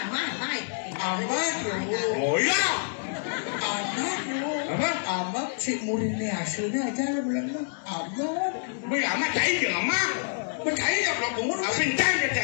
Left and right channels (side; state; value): right; silent; digital silence